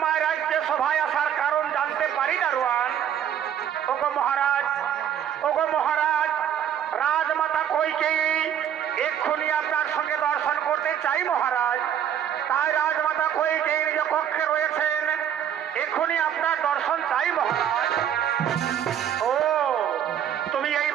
রাজ্যে সভায় আসার কারণ জানতে পারি দারোয়ান? ওগো মহারাজ, ওগো মহারাজ, রাজমাতা কইকেয়ী এক্ষুনি আপনার সঙ্গে দর্শন করতে চাই মহারাজ। তাই রাজমাতা কইকেয়ী নিজ কক্ষে রয়েছেন, এক্ষুনি আপনার দর্শন চাই মহারাজ। ও, তুমি এই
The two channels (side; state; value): left; quieter; 9.5 dB